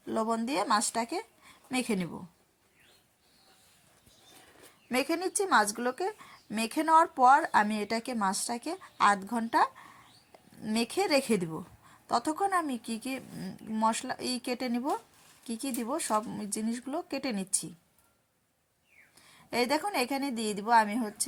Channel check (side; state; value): both; identical; correlation 1.00